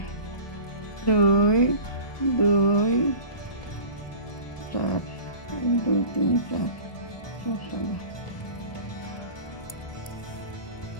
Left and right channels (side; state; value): right; late; 1.4 ms